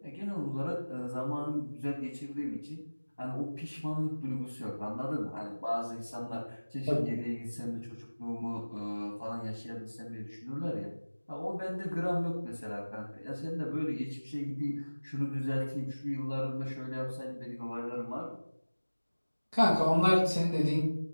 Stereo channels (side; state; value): both; inverted; correlation -1.00